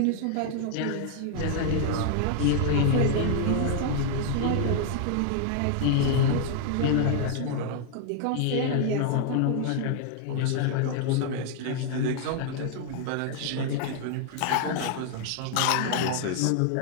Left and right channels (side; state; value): both; different; correlation 0.00